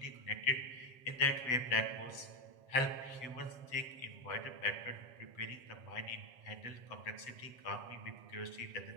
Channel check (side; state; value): right; late; 7.4 ms